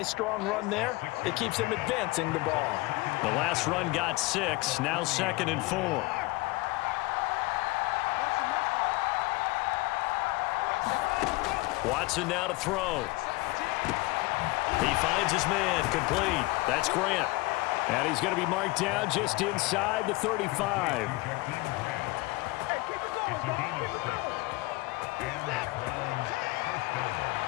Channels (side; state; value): right; quieter; 22.5 dB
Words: strong run there. It keeps them advancing the ball. The last run got 6. Now 2nd and 4. Watson now to throw. He finds his man, complete. That's Grant. And he's going to be marked down just inside the 35.